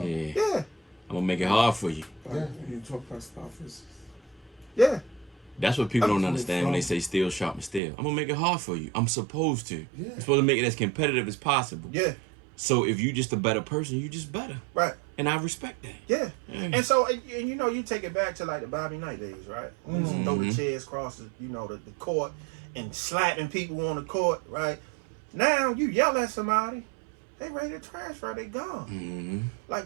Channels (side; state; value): left; drops out; at 7.8 s